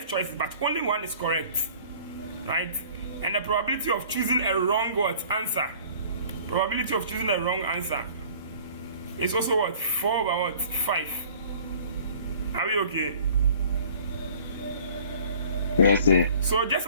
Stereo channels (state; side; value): inverted; both; correlation -0.51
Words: choices, but only 1 is correct, right? And the probability of choosing a wrong answer. Probability of choosing a wrong answer is also what? 4 over what? 5. Are we okay? Yes, sir. So just